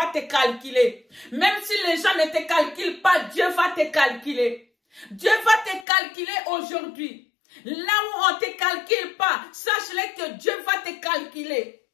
te calculer. Même si les gens ne te calculent pas, Dieu va te calculer. Dieu va te calculer aujourd'hui. Là où on ne te calcule pas, sache-le que Dieu va te calculer.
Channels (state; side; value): drops out; right; at 5.9 s